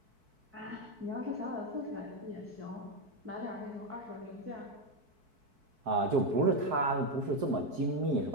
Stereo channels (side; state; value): left; late; 4.6 ms